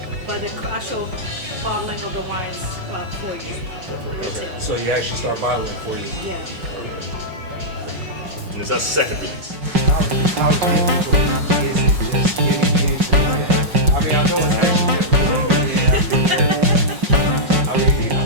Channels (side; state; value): left; late; 5.5 ms